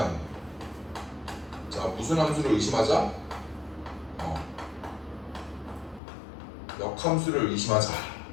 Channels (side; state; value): right; drops out; at 6.0 s